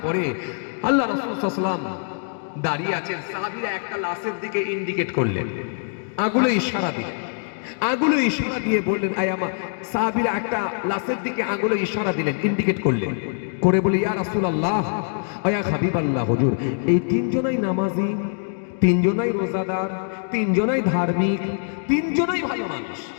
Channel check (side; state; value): right; silent; digital silence